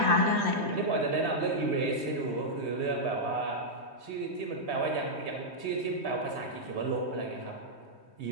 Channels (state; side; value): late; left; 3.2 ms